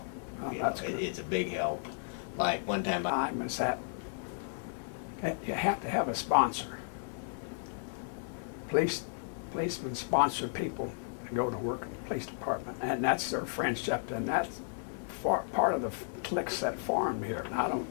Oh, You that's know, good. It's a big help. Like one time, Time is that you have to have a sponsor. Policemen sponsor people to go to work in the police department, and that's their friendship, and that's part of the cliques that formed here. And I don't.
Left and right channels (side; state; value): right; silent; digital silence